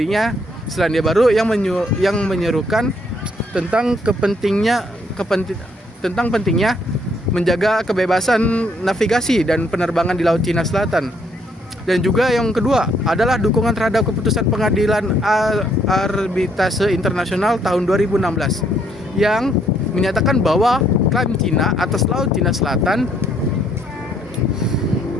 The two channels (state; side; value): normal; both; correlation 0.69